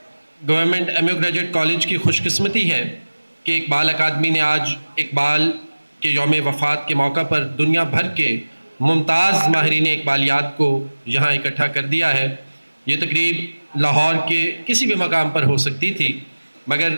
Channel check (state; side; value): inverted; both; correlation -1.00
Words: government M U graduate college کی خوش قسمتی ہے کہ اقبال اکیڈمی نے آج اقبال کے یوم وفات کے موقع پر دنیا بھر کے ممتاز ماہرین اقبالیات کو یہاں اکٹھا کر دیا ہے۔ یہ تقریب لاہور کے کسی بھی مقام پر ہو سکتی تھی، مگر